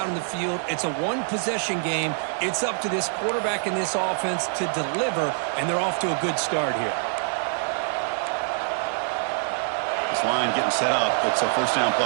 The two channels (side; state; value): left; silent; 62 dB below the other